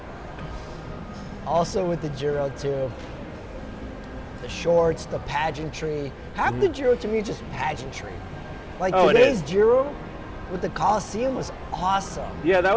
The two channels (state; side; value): identical; both; correlation 1.00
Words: Also with the Giro too, the shorts, the pageantry. Half the Giro to me is just pageantry. Today's Giro with the Coliseum was awesome. Yeah, that